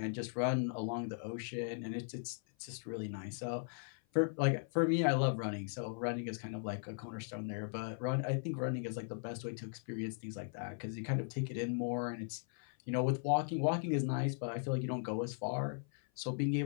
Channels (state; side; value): silent; right; 52 dB below the other